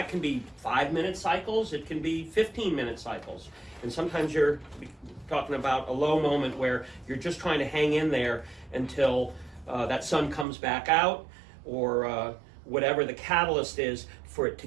can be 5-minute cycles, it can be 15-minute cycles, and sometimes you're talking about a low moment where you're just trying to hang in there until that sun comes back out, or whatever the catalyst is for it to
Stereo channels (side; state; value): left; drops out; at 10.5 s